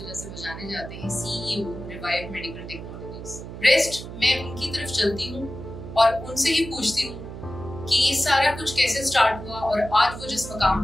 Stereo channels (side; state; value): right; noise; hum, 11 dB below the sound